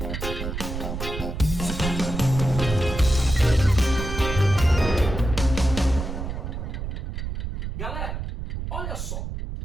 Galera, olha só,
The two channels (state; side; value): noise; right; rumble, 5 dB below the sound